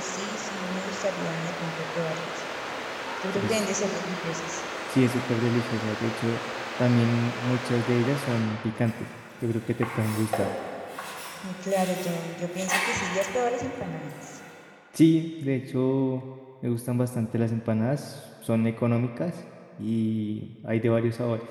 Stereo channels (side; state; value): both; identical; correlation 1.00